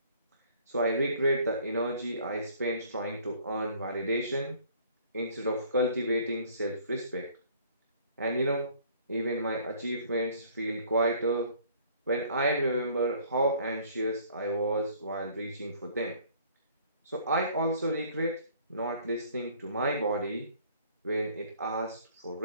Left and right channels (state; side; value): inverted; both; correlation -0.56